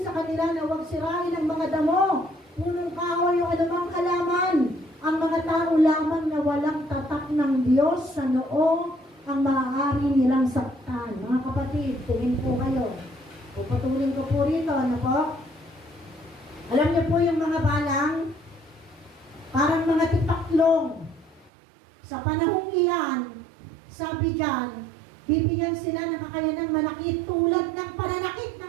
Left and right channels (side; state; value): left; drops out; at 21.5 s